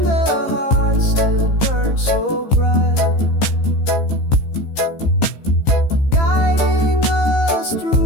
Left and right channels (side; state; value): right; late; 15 ms